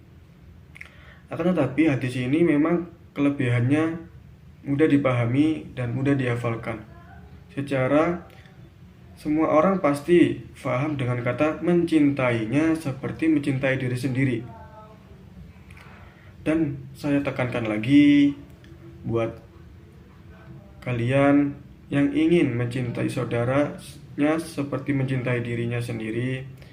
Akan tetapi hadis ini memang kelebihannya mudah dipahami dan mudah dihafalkan. Secara semua orang pasti paham dengan kata mencintainya seperti mencintai diri sendiri. Dan saya tekankan lagi buat kalian yang ingin mencintai saudaranya seperti mencintai dirinya sendiri,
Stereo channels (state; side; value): identical; both; correlation 1.00